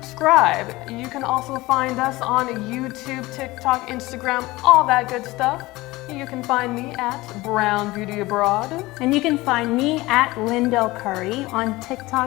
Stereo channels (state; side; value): quieter; right; 20.0 dB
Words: You can also find us on YouTube, TikTok, Instagram, all that good stuff. You can find me at Brown Beauty Abroad. And you can find me at Lindell Curry on